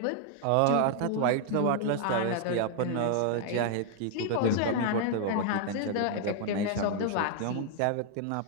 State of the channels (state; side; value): different; both; correlation 0.00